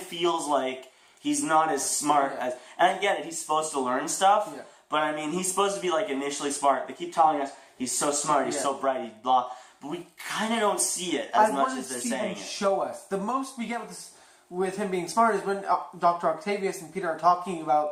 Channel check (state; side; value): identical; both; correlation 1.00